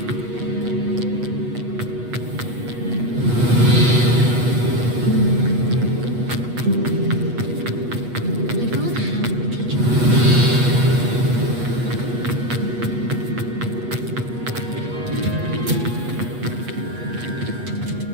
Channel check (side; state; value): left; late; 8.3 ms